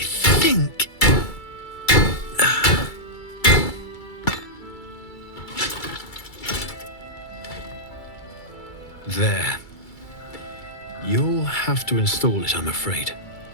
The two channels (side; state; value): right; late; 2.3 ms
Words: There. You'll have to install it, I'm afraid.